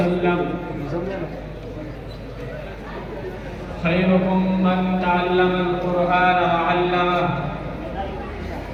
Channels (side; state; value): both; identical; correlation 1.00